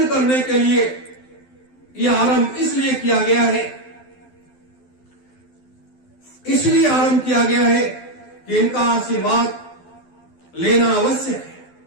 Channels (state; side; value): late; right; 12 ms